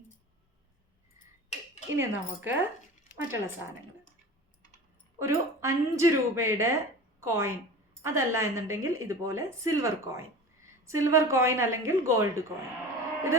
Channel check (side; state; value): both; normal; correlation 0.35